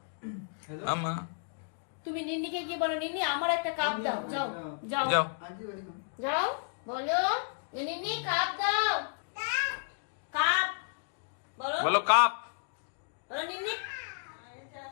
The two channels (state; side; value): silent; right; digital silence